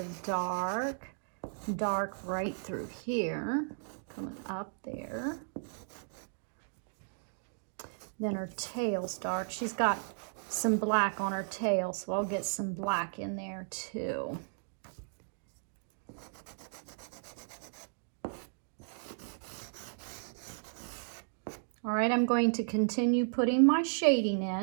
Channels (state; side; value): silent; left; digital silence